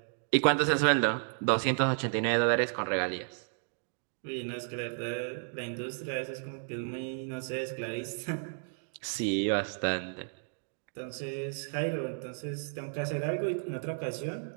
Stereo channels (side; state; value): left; silent; digital silence